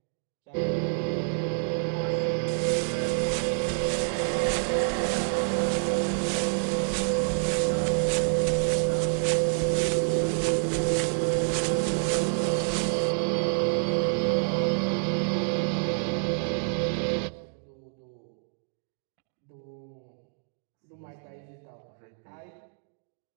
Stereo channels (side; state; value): left; silent; digital silence